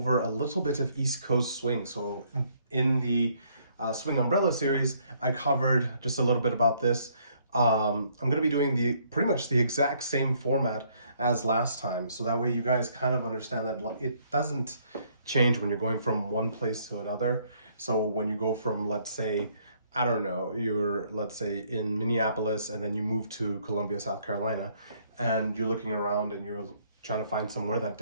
a little bit of East Coast swing. So in the Swing Umbrella series, I covered just a little bit about this. I'm going to be doing pretty much the exact same format as last time. So that way you guys kind of understand that it doesn't change when you're going from one place to another. So when you go from, let's say, I don't know, let's say in Minneapolis and then you move to Columbia, South Carolina, and you're looking around and you're trying to find somewhere that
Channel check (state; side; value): inverted; both; correlation -0.66